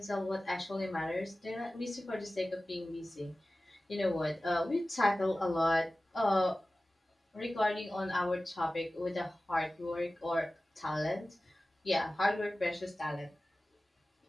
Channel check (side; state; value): both; normal; correlation 0.96